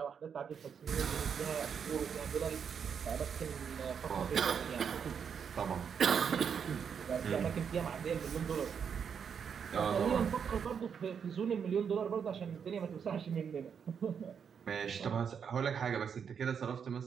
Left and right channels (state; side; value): quieter; left; 7.1 dB